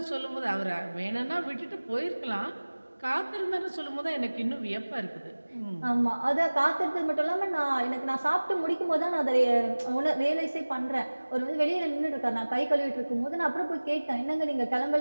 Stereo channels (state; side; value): inverted; both; correlation -1.00